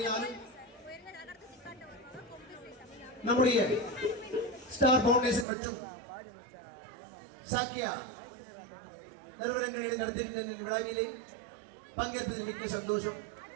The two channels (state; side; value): drops out; left; at 5.5 s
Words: நம்முடைய ஸ்டார் பவுண்டேஷன் மற்றும் சாக்கியா நிறுவனங்களிடம் நடத்திருக்கின்ற விழாவிலே பங்கேற்பதில் மிக்க சந்தோஷம்.